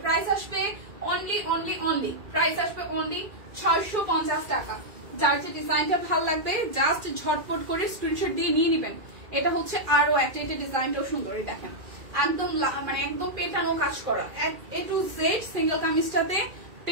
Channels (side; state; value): left; late; 2.4 ms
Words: প্রাইস আসবে অনলি প্রাইস আসবে অনলি 650 টাকা। যার যে ডিজাইনটা ভালো লাগবে জাস্ট ঝটপট করে স্ক্রিনশট দিয়ে নিয়ে নেবেন। এটা হচ্ছে আরো একটা, এটা ডিজাইনটাও সুন্দর। দেখেন একদম মানে একদম পেটানো কাজ করা, A to Z সিঙ্গেল কামিজটাতে